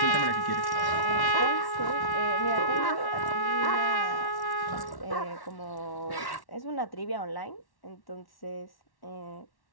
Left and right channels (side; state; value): right; late; 1.1 ms